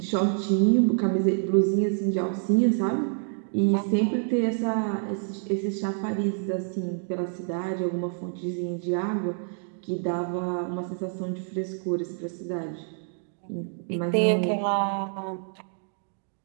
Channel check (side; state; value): left; silent; 56 dB below the other